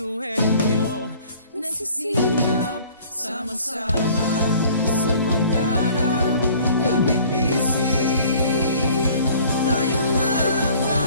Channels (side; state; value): both; inverted; correlation -0.52